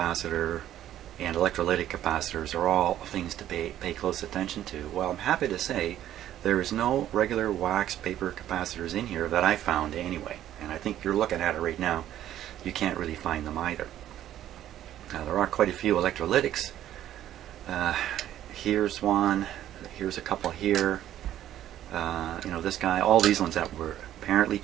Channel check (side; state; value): left; quieter; 12.1 dB